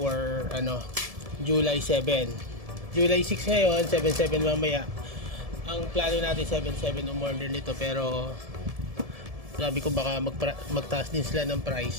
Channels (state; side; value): late; left; 1.7 ms